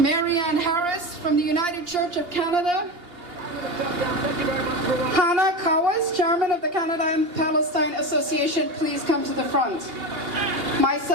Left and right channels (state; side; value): late; left; 2.8 ms